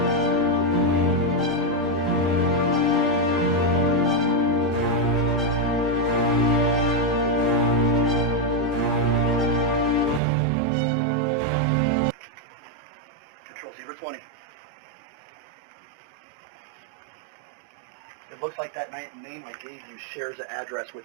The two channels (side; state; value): left; drops out; at 10.2 s